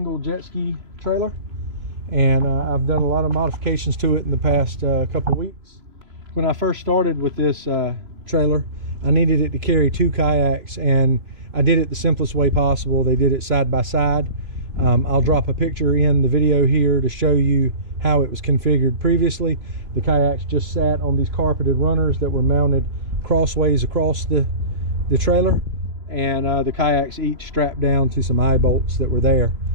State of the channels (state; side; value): late; left; 3.0 ms